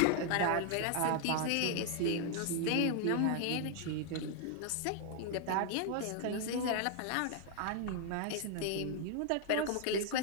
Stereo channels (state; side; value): different; both; correlation 0.00